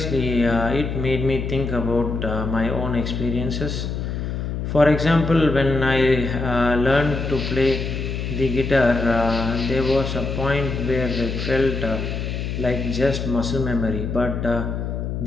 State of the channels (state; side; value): noise; left; hum, 3 dB below the sound